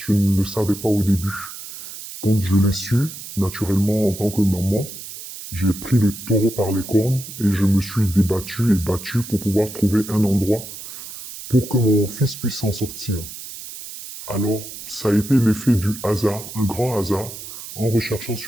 ne le savais pas au début. Quand je l'ai su, naturellement, en tant que maman, j'ai pris le taureau par les cornes et je me suis débattu et battu pour pouvoir trouver un endroit pour que mon fils puisse s'en sortir. Alors, ça a été l'effet du hasard, un grand hasard. En recherchant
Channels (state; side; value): noise; right; hiss, 12 dB below the sound